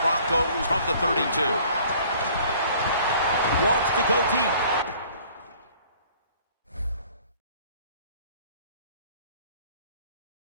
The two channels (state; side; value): inverted; both; correlation -0.54